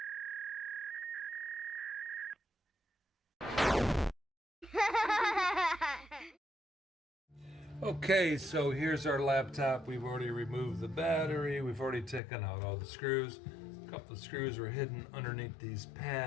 Okay, so here's our laptop. We've already removed the battery. We've already taken out all the screws. A couple of screws are hidden underneath these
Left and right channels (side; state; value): right; drops out; at 12.2 s